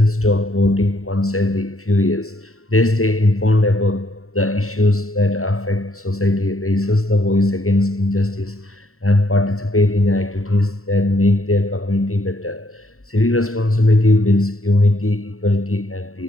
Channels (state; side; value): late; right; 0.63 ms